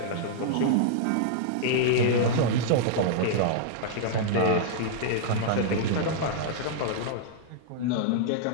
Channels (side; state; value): both; different; correlation -0.01